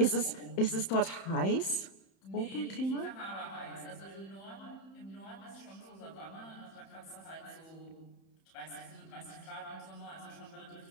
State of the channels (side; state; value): right; late; 31 ms